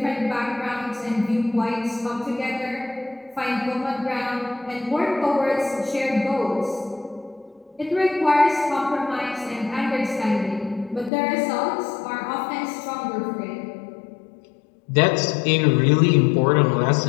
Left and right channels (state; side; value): drops out; right; at 11.1 s